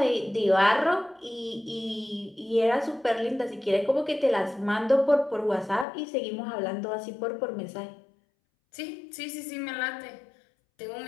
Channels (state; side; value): drops out; right; at 5.9 s